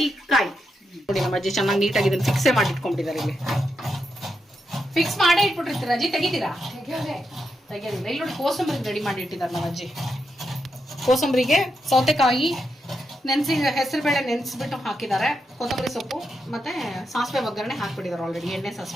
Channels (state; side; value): normal; both; correlation 0.84